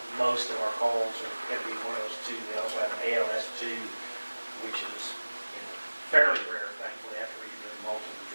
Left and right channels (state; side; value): inverted; both; correlation -1.00